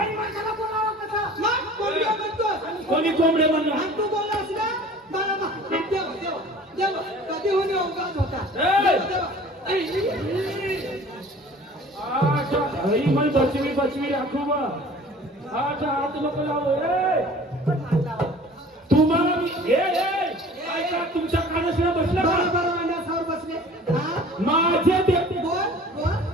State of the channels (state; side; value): normal; both; correlation 0.46